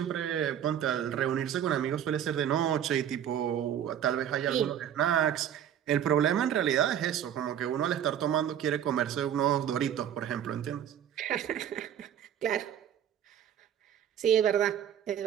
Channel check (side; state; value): left; quieter; 9.8 dB